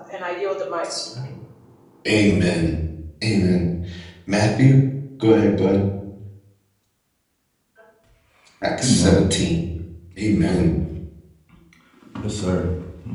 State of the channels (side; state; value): both; identical; correlation 1.00